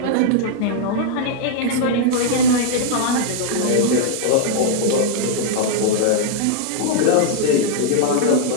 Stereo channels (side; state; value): both; different; correlation -0.01